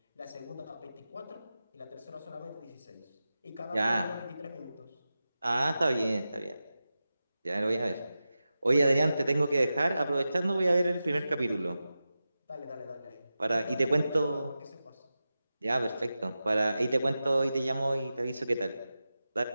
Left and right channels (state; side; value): inverted; both; correlation -0.93